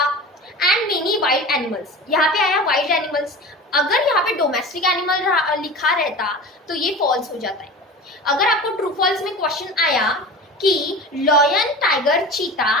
एंड मेनी वाइल्ड एनिमल्स. यहाँ पे आया वाइल्ड एनिमल्स. अगर यहाँ पे डोमेस्टिक एनिमल लिखा रहता तो ये फॉल्स हो जाता है. अगर आपको ट्रू फॉल्स में क्वेश्चन आया कि lion, tiger, cheetah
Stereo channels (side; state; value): both; normal; correlation 0.34